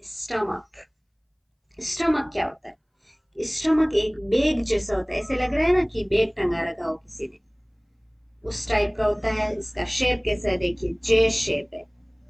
स्टमक। स्टमक क्या होता है? स्टमक एक बैग जैसा होता है, ऐसे लग रहा है ना कि बैग टंगा रखा हो किसी ने, उस टाइप का होता है। इसका शेप कैसा है, देखिए जे शेप है,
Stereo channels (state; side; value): identical; both; correlation 1.00